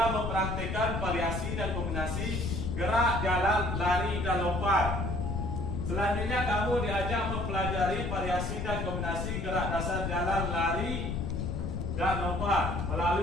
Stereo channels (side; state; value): left; noise; rumble, 2 dB below the sound